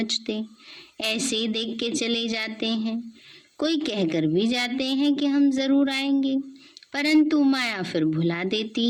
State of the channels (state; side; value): identical; both; correlation 1.00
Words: ऐसे ही देख के चले जाते हैं। कोई कहकर भी जाते हैं कि हम जरूर आएंगे, परंतु माया फिर भुला